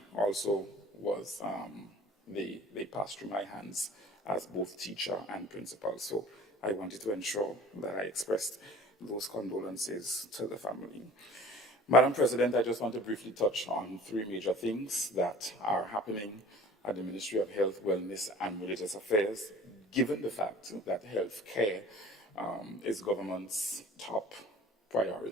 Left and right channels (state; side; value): normal; both; correlation 0.45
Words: also was, they passed through my hands as both teacher and principal. So I wanted to ensure that I expressed those condolences to the family. Madam President, I just want to briefly touch on 3 major things that are happening at the Ministry of Health, Wellness and Religious Affairs, given the fact that health care is government's top